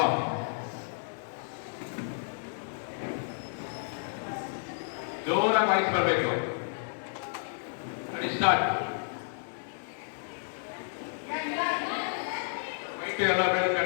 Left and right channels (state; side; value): silent; right; digital silence